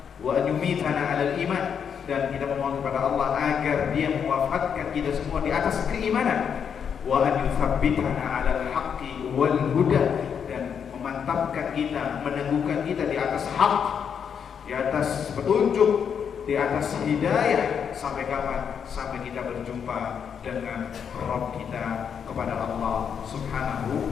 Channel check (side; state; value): right; quieter; 7.4 dB